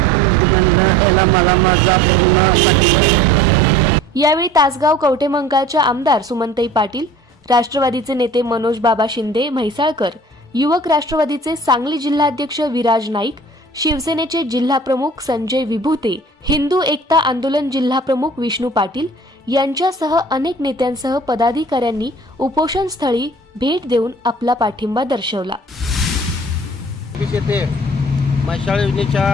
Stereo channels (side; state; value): both; normal; correlation 0.46